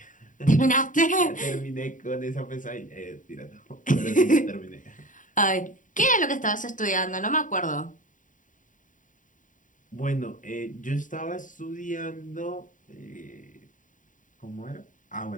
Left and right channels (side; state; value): right; late; 0.38 ms